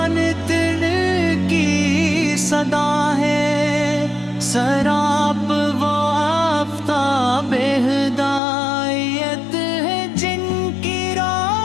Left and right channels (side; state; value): right; drops out; at 8.4 s